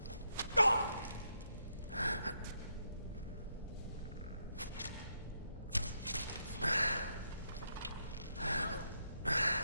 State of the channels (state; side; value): inverted; both; correlation -0.80